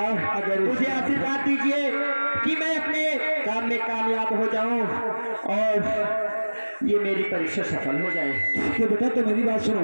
अगर मुझे आशीर्वाद दीजिए कि मैं अपने काम में कामयाब हो जाऊं और ये मेरी परीक्षा सफल हो जाए। ठीक है बेटा, तो मेरी बात सुनो।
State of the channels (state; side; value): inverted; both; correlation -1.00